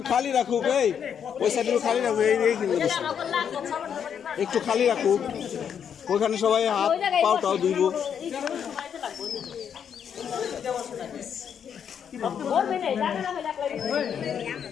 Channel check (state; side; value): quieter; right; 8.0 dB